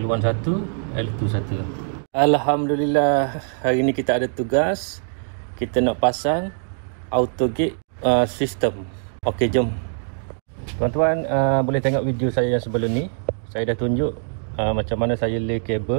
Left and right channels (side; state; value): left; silent; digital silence